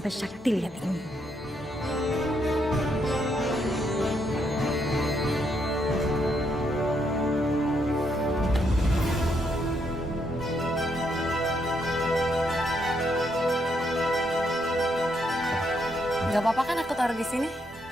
Sakti lihat ini. Gak apa-apa kan aku taruh di sini?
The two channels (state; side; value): normal; both; correlation 0.76